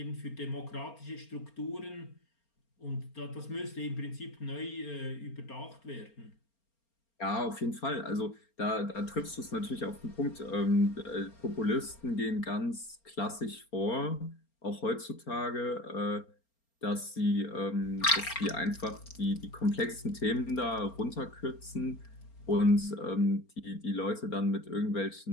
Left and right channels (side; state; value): right; late; 4.3 ms